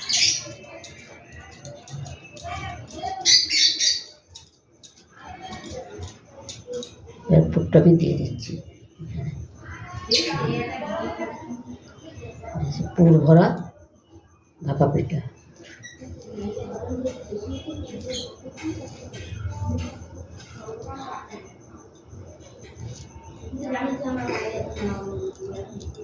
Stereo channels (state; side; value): identical; both; correlation 1.00